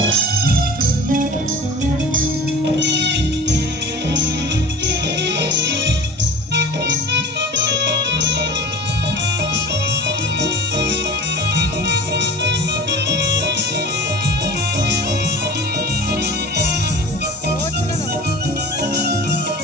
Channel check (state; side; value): normal; both; correlation 0.39